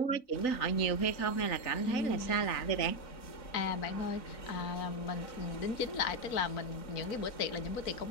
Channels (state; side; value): late; right; 3.9 ms